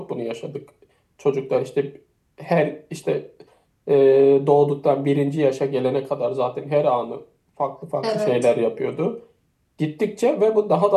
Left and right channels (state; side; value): identical; both; correlation 1.00